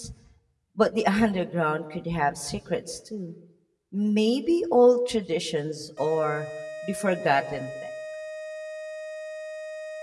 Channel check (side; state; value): both; identical; correlation 1.00